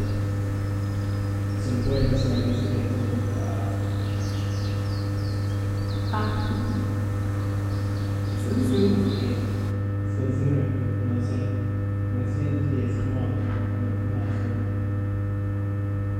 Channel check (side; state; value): both; identical; correlation 1.00